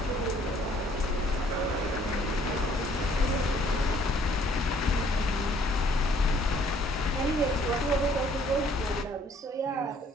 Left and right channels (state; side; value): normal; both; correlation 0.61